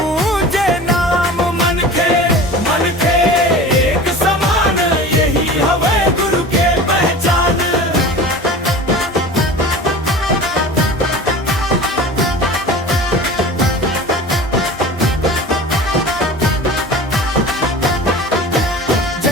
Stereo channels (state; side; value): normal; both; correlation 0.37